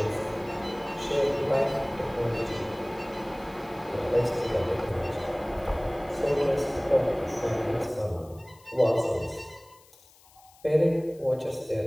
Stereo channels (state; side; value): noise; left; hiss, 27 dB below the sound